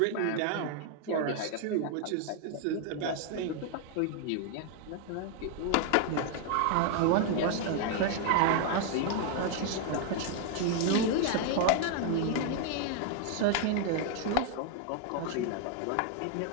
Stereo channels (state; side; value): different; both; correlation 0.00